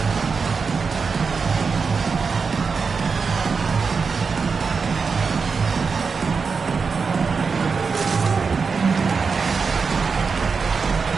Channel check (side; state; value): left; quieter; 5.1 dB